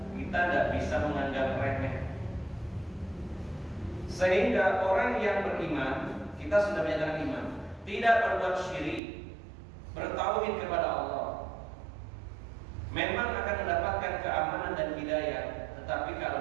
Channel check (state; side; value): drops out; left; at 9.0 s